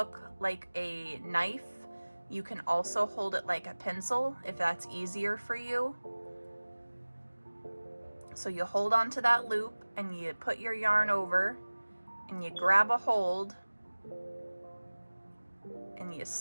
like a knife. You can also hold it like a pencil if that's easier for you. So you hold on to that loop and you put your yarn over and you grab a hold and you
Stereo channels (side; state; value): both; inverted; correlation -1.00